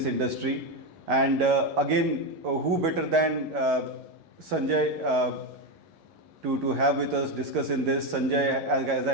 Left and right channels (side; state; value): left; late; 11 ms